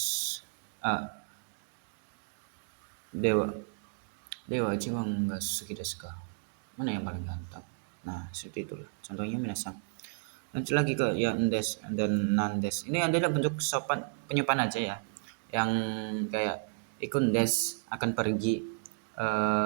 dewa dewa Ichiban ga suki desu ka. Mana yang paling ganteng? Nah, seperti itulah contohnya minasang. Lanjut lagi ke yang des dan nandes. Ini adalah bentuk sopan penyepan aja ya. Yang kayak ikun des akan pergi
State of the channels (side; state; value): left; silent; digital silence